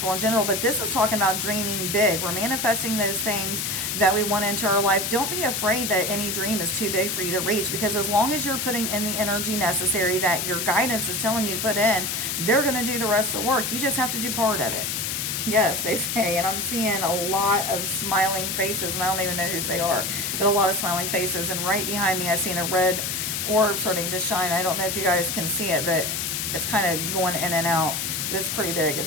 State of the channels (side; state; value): left; noise; hiss, 1 dB below the sound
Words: in general. But this is talking about dreaming big. We're manifesting those things that we want into our life. Don't be afraid that any dream is too big for you to reach, because as long as you're putting in the energy necessary that your guidance is telling you to put in, they're going to do the rest of the work. You just have to do part of it. Yes, they say, and I'm seeing a lot of smiling faces, and I don't even know whose they are, but a lot of smiling faces. And right behind me, I've seen a red orb starting to shine. I don't know if you guys can see it, but it's kind of going in and out, but it's pretty big.